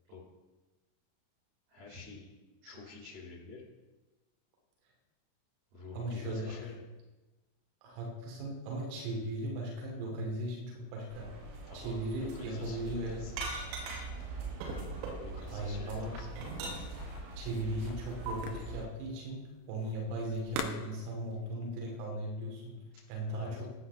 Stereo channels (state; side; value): late; left; 32 ms